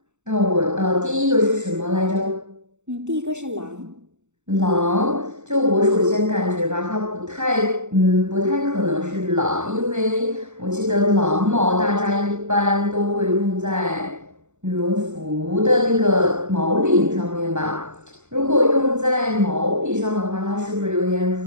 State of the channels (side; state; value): left; late; 0.84 ms